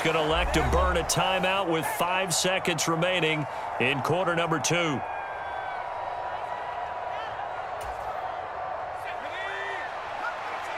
going to elect to burn a timeout with 5 seconds remaining in quarter number 2.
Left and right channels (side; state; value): both; identical; correlation 1.00